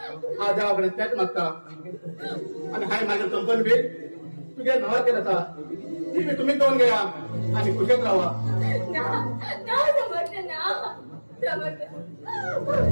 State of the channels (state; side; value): inverted; both; correlation -1.00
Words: हा देवाकडे त्याच मागता आणि हाय माझ्या कंपनी बी तुझ्या नावा केला ती बी तुम्ही दोन घ्या आणि कुशल राहा